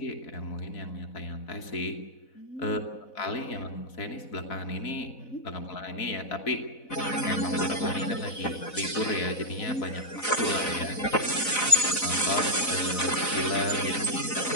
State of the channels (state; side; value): late; right; 4.0 ms